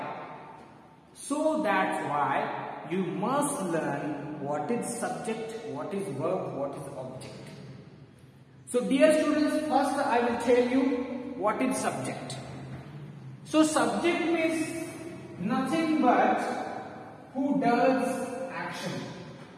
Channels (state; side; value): identical; both; correlation 1.00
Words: why you must learn what is subject, what is verb, what is object. So dear students, first I will tell you what is subject. So subject means nothing but who does action.